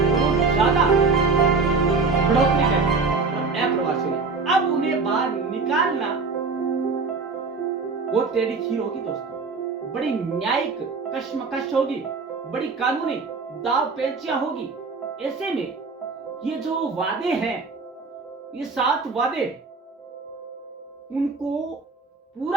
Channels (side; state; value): left; quieter; 4.3 dB